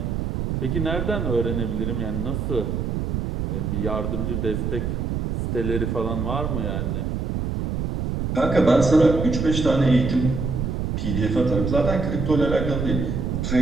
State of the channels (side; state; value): right; noise; rumble, 1 dB below the sound